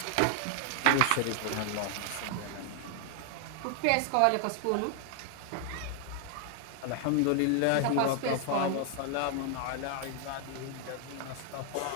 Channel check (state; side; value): different; both; correlation 0.00